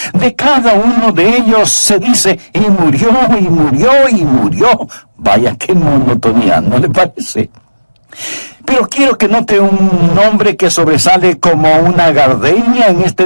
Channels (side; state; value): both; inverted; correlation -1.00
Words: De cada uno de ellos se dice, y murió, y murió, y murió. Vaya, qué monotonía, ¿no le parece? Pero quiero que note un nombre que sobresale como una gardenia en